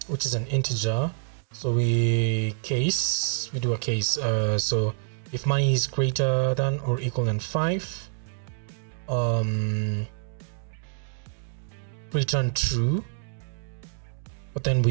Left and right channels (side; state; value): left; silent; digital silence